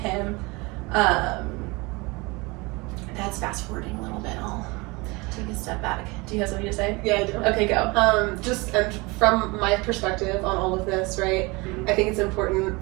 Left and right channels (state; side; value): quieter; left; 25.4 dB